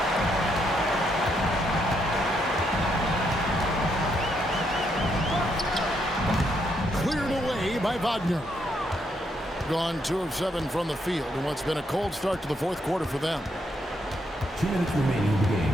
By Wagner. Gone 2 of 7 from the field in what's been a cold start to the fourth quarter for them. 2 minutes remaining in the game.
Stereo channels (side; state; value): both; normal; correlation 0.76